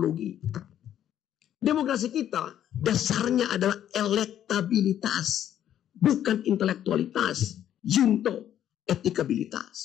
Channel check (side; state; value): right; quieter; 10.7 dB